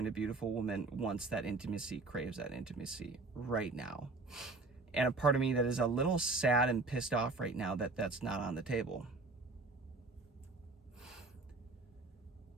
a beautiful woman, wants that intimacy, craves that intimacy right now. And a part of me that is a little sad and pissed off right now that that's not on the table.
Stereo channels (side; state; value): left; quieter; 3.5 dB